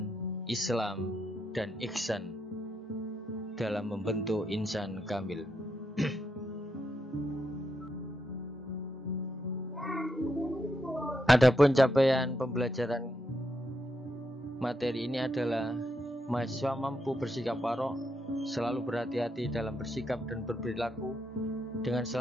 Islam, dan ihsan dalam membentuk insan kamil. Adapun capaian pembelajaran materi ini adalah mahasiswa mampu bersikap warok, selalu berhati-hati dalam bersikap dan berperilaku dengan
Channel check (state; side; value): normal; both; correlation 0.81